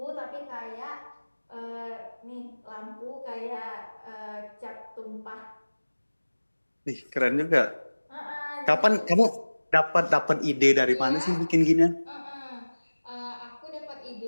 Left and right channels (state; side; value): inverted; both; correlation -1.00